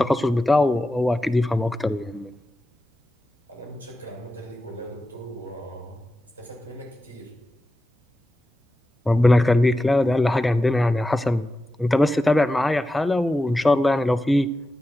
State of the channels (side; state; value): both; normal; correlation 0.93